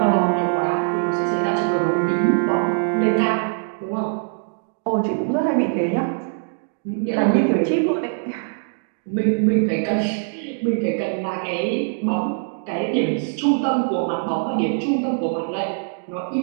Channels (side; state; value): left; silent; digital silence